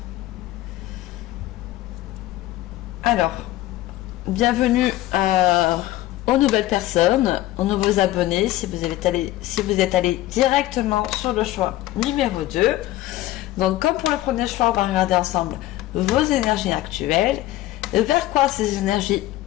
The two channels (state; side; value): quieter; right; 15.6 dB